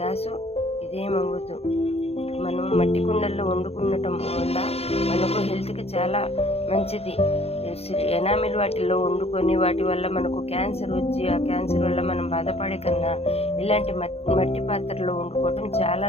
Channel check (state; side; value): late; right; 0.29 ms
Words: ఇదేమవ్వదు. మనం మట్టి కుండల్లో వండుకునటం వల్ల మనకు హెల్త్కి చాలా మంచిది. ఎనామిల్ వాటిల్లో వండుకొని వాటి వల్ల మనకు క్యాన్సర్ వచ్చి ఆ క్యాన్సర్ వల్ల మనం బాధపడే కన్నా ఇలాంటి మట్టి పాత్రలో వండుకోవటం చాలా